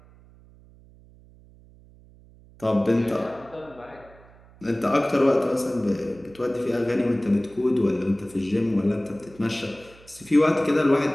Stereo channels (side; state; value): right; noise; hum, 25 dB below the sound